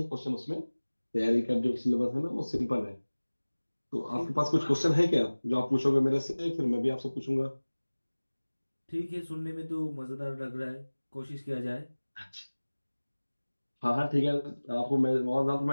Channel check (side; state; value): both; inverted; correlation -1.00